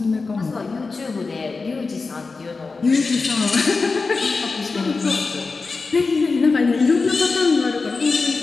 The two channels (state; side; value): quieter; right; 4.2 dB